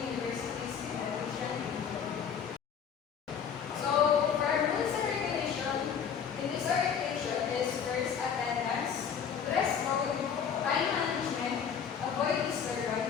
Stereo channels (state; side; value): quieter; right; 7.4 dB